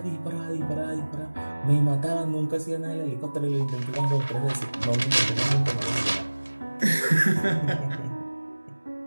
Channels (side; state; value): both; inverted; correlation -1.00